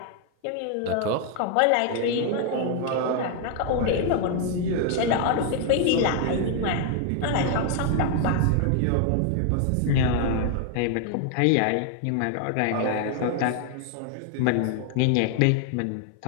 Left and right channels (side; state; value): both; different; correlation 0.00